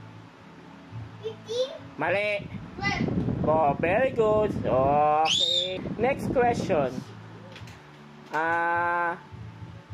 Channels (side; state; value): both; identical; correlation 1.00